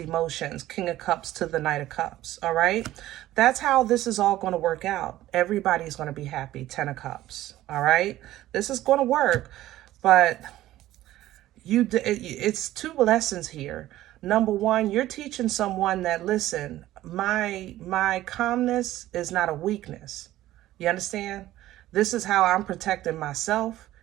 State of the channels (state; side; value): quieter; left; 14.8 dB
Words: King of Cups to the Knight of Cups. All right. That's how this is all going to work out. Everybody's going to be happy. 10 of Cups. All right. This is going to work, but it's two lessons here. Number one, you're teaching someone that, listen, my calmness is not a weakness. You understand? This is how I'm protecting myself